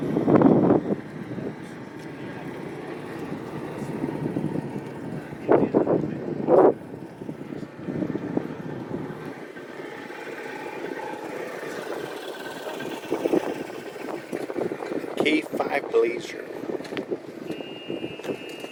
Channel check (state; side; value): identical; both; correlation 1.00